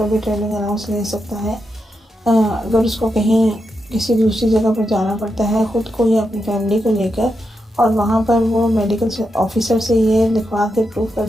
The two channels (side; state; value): both; normal; correlation 0.85